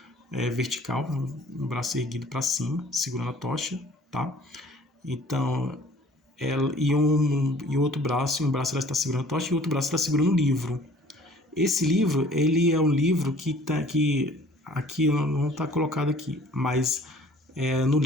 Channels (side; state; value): both; normal; correlation 0.53